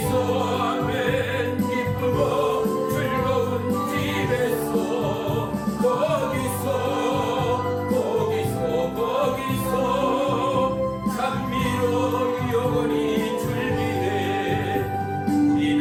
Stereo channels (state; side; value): identical; both; correlation 1.00